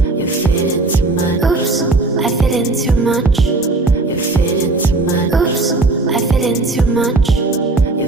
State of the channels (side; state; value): left; quieter; 3.2 dB